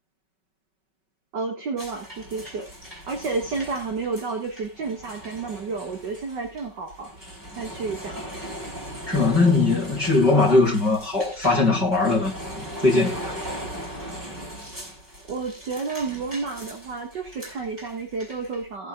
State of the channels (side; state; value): left; late; 5.3 ms